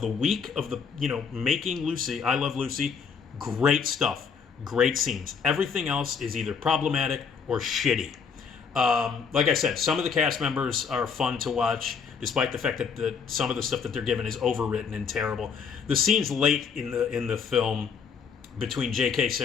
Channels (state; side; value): quieter; right; 6.1 dB